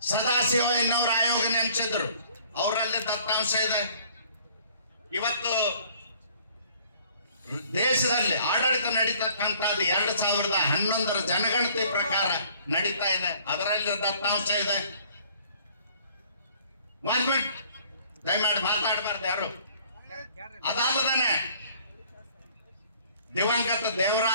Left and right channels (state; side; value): inverted; both; correlation -0.57